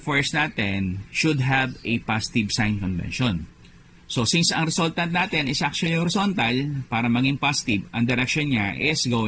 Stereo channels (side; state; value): both; identical; correlation 1.00